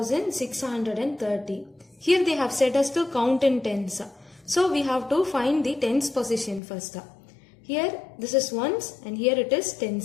Here they have said us to count in tens. So we have to find the tens position first. Here this is ones and here it is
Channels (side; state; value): right; drops out; at 6.6 s